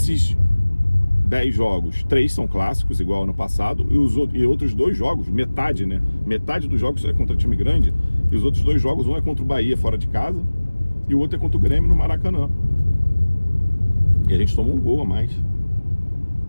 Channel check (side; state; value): both; inverted; correlation -1.00